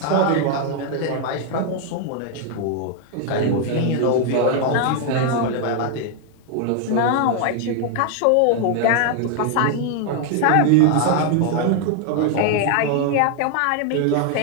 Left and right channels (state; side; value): different; both; correlation 0.00